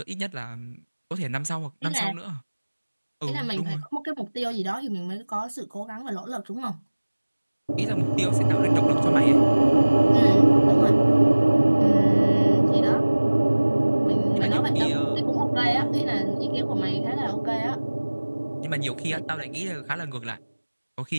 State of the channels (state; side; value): inverted; both; correlation -1.00